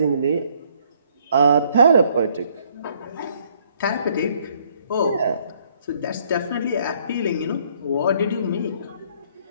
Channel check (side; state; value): both; inverted; correlation -0.66